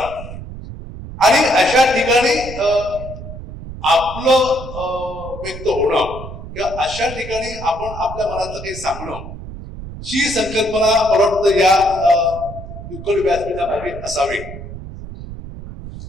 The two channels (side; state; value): right; noise; rumble, 11 dB below the sound